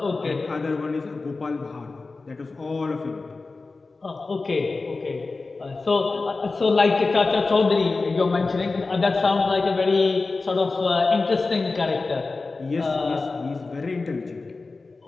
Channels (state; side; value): quieter; right; 3.7 dB